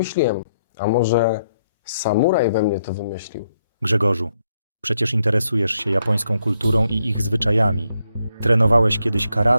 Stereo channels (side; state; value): both; inverted; correlation -0.77